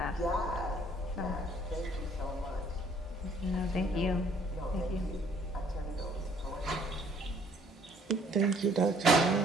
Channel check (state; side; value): normal; both; correlation 0.61